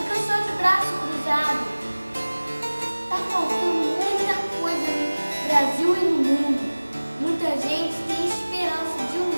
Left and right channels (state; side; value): inverted; both; correlation -1.00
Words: só de braço cruzado. Está faltando muita coisa no Brasil e no mundo. Muita gente tem esperança de